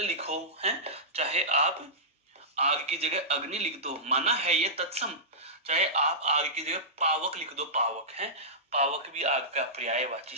लिखो, हैं? चाहे आप आग की जगह अग्नि लिख दो, माना है ये तत्सम, चाहे आप आग की जगह पावक लिख दो, पावक, है? पावक भी आग का पर्यायवाची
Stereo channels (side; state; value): both; normal; correlation -0.16